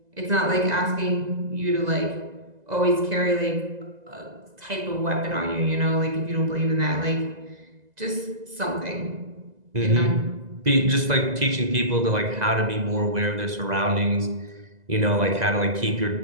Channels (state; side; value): late; left; 2.0 ms